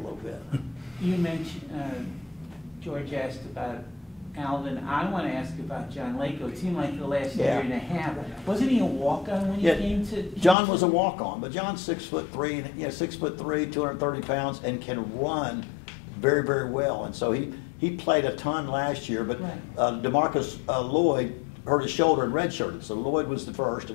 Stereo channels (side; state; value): right; drops out; at 10.6 s